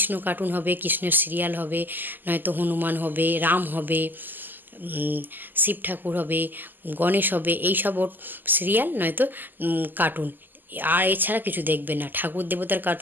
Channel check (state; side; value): late; left; 0.089 ms